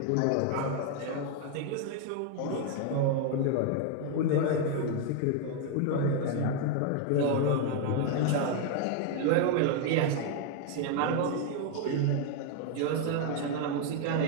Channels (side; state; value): both; different; correlation 0.01